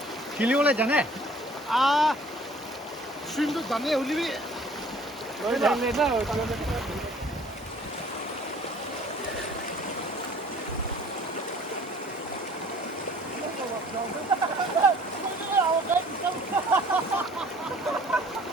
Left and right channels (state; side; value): normal; both; correlation 0.52